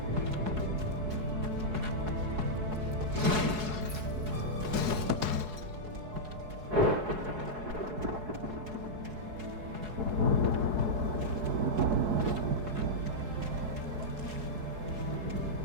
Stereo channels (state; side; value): late; left; 4.7 ms